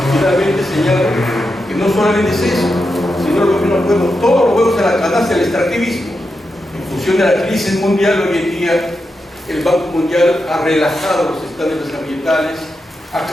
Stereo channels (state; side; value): normal; both; correlation 0.87